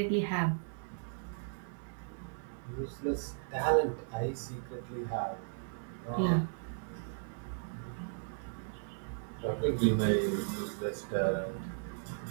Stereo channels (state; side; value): silent; left; digital silence